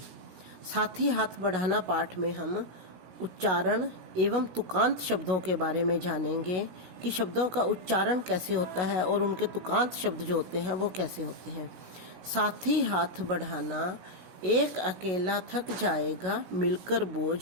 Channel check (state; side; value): late; left; 16 ms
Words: साथी हाथ बढ़ाना पाठ में हम उच्चारण एवं तुकांत शब्दों के बारे में जानेंगे कि शब्दों का उच्चारण कैसे होता है और उनके तुकांत शब्द जो होते हैं वो कैसे होते हैं। साथी हाथ बढ़ाना, एक अकेला थक जाएगा मिलकर